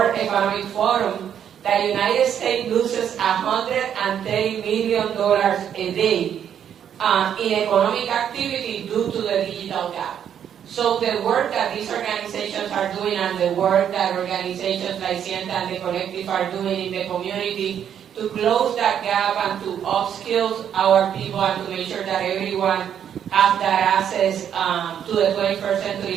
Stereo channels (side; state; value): left; quieter; 9.0 dB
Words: Economic Forum that the United States loses $130 million a day in economic activity due to the digital gap. So the work that these organizations are doing and the work that organizations like Sienta and the Collective are doing in the community to close that gap and to upskill our people and to make sure that everyone has that access to the 21st